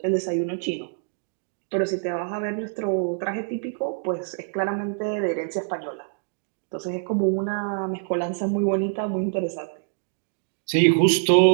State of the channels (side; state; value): left; silent; digital silence